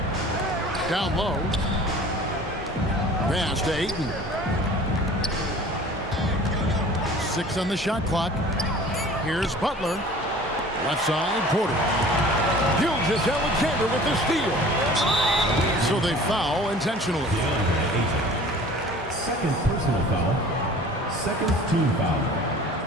Down low. Pass to Ayton. 6 on the shot clock. Here's Butler. Left side, Porter. Gilgeous-Alexander with the steal. So they foul intentionally. Second personal foul. Second team foul.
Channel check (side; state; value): both; normal; correlation 0.45